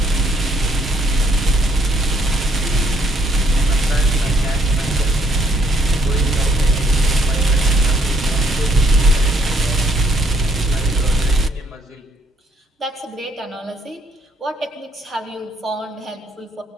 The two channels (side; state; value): both; normal; correlation 0.68